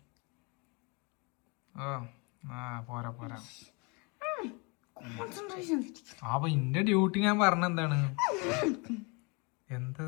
പോരാ. അപ്പൊ ഇന്റെ ഡ്യൂട്ടി ഞാൻ പറഞ്ഞ എന്താണ്, എന്ത്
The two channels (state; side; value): quieter; right; 30.8 dB